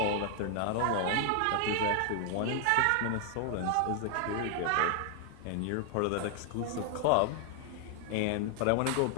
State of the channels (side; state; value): both; different; correlation 0.00